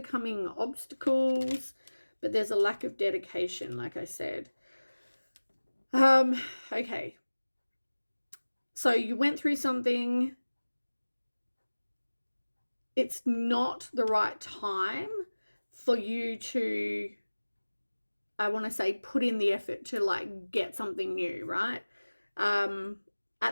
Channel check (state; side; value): inverted; both; correlation -1.00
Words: obstacles, but there's a lack of dedication, like I said. Okay. So you went through something. It's not the right time for you to, I want to say, put in the effort to get something new, right?